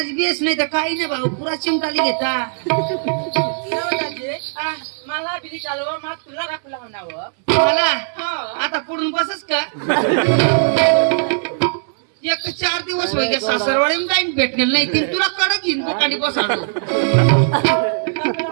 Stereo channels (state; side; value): silent; left; 66 dB below the other